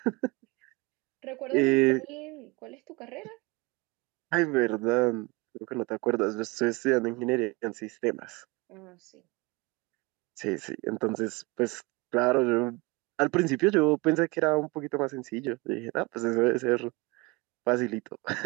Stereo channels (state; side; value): quieter; left; 25.3 dB